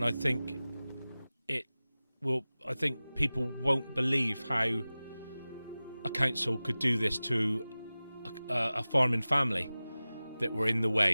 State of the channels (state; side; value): inverted; both; correlation -0.97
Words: I think people won't believe how a council could do this to a farming family that were in the